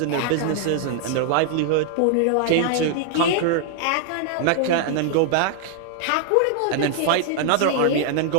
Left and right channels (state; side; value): different; both; correlation 0.00